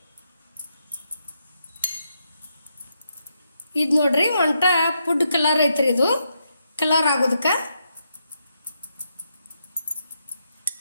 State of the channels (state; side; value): inverted; both; correlation -0.81